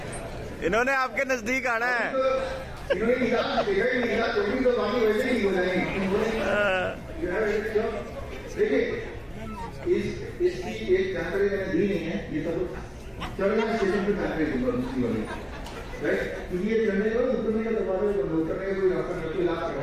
इन्होंने आपके नजदीक आना है, इन्होंने निकाल देखा ही नहीं, तो तो बाकी वैसे ही हो जाएंगे। देखिए इसकी एक जानकारी मैंने दी नहीं है, ये सब चढ़ना स्टेशन पे जानकारी दूंगा दूसरी वाली, राइट, क्योंकि ये चढ़ने का उतरने का दरवाजा बंद करने का कोई रास्ता नहीं, इलाज करना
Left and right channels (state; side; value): identical; both; correlation 1.00